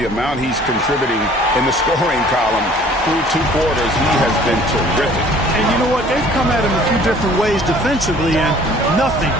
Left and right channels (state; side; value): normal; both; correlation 0.53